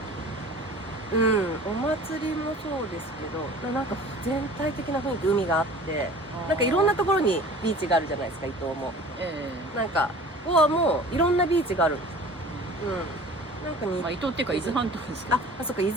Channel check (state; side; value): normal; both; correlation 0.43